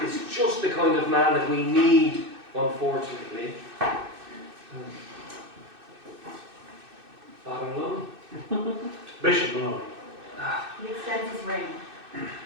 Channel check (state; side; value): late; left; 2.6 ms